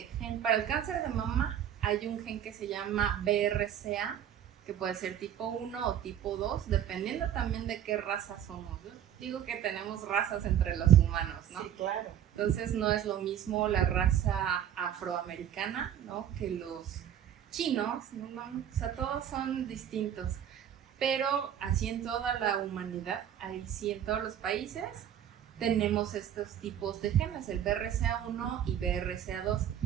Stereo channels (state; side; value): quieter; left; 10.0 dB